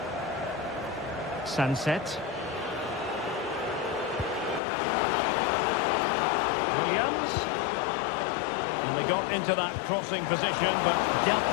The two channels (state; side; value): drops out; right; at 4.6 s